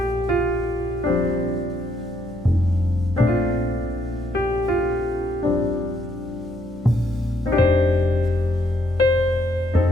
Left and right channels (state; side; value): normal; both; correlation 0.72